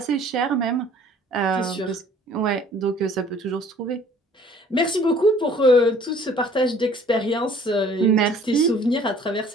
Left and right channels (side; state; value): both; normal; correlation 0.54